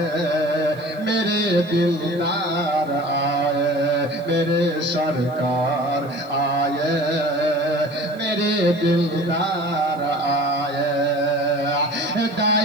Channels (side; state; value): right; noise; hiss, 29 dB below the sound